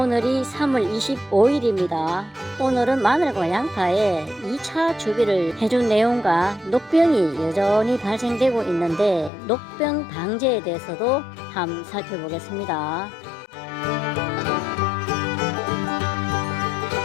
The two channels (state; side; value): drops out; right; at 9.3 s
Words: 오늘이 3월 25일입니다. 오늘은 마늘과 양파에 2차 주비를 해준 내용과 녹병이 여전히 발생되고 있는데 녹병 방제에 대해서도 한번 살펴보겠습니다.